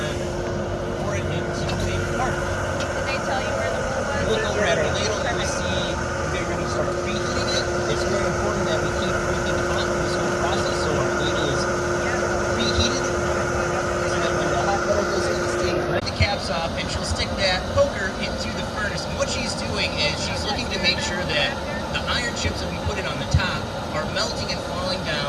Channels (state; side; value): identical; both; correlation 1.00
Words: pour it into a part. Did they tell you where the hole was? Look over at our ladle and we see we're going to start preheating it. It's very important that we keep everything hot in this whole process so our ladle is preheated so that when the hot metal goes in, it's taken the caps off and she'll stick that poker into the furnace. And what she's doing is she's looking to make sure that the iron chips that we put in on the top are melting and falling